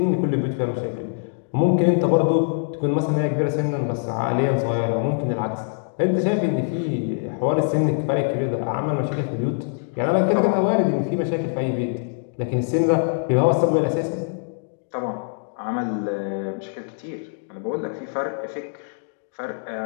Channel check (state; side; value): silent; right; digital silence